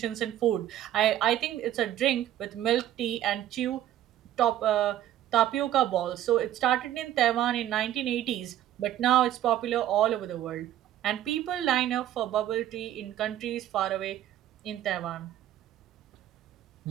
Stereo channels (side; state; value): left; quieter; 12.2 dB